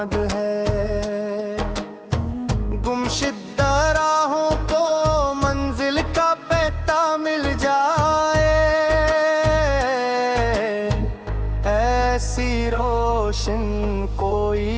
है। गुमशुदा राहों को मंजिल का पता मिल जाए, ऐसी रोशन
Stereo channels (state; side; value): identical; both; correlation 1.00